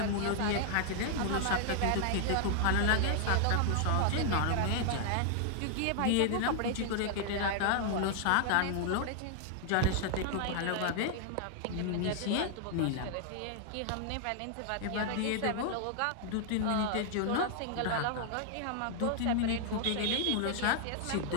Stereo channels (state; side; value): different; both; correlation 0.00